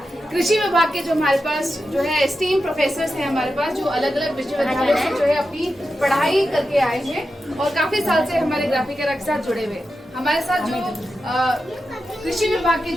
कृषि विभाग के जो हमारे पास जो है एस्टीम प्रोफेसर्स हैं हमारे पास, जो अलग अलग विश्वविद्यालयों से जो है अपनी पढ़ाई करके आए हैं और काफी साल से हमारे ग्राफिक एरा के साथ जुड़े हुए। हमारे साथ जो कृषि विभाग के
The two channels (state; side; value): normal; both; correlation 0.90